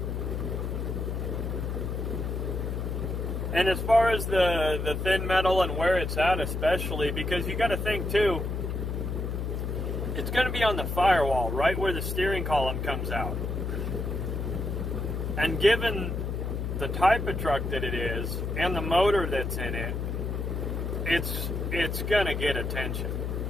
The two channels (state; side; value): noise; left; hum, 2 dB below the sound